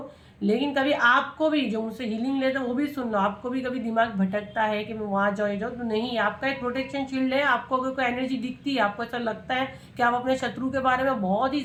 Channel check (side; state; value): both; identical; correlation 1.00